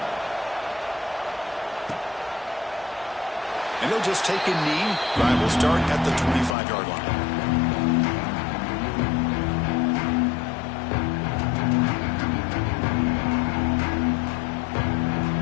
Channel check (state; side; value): drops out; right; at 6.6 s